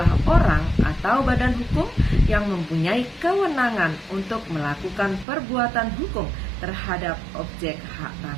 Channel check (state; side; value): drops out; left; at 5.2 s